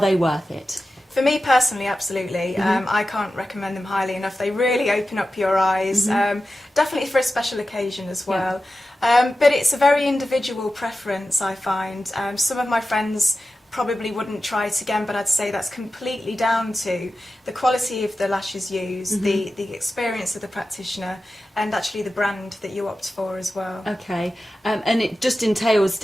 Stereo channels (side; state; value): both; normal; correlation 0.93